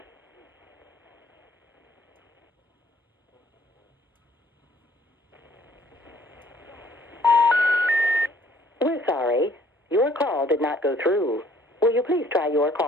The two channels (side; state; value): both; normal; correlation 0.59